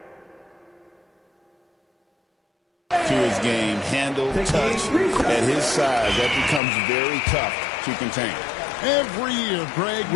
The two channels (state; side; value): drops out; right; at 6.6 s